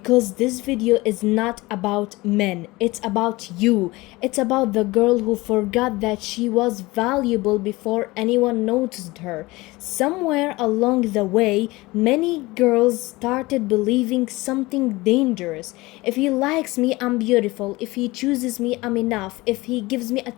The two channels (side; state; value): right; quieter; 21.2 dB